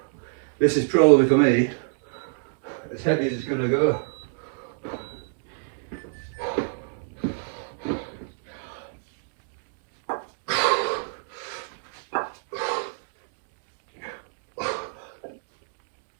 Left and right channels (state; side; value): silent; left; digital silence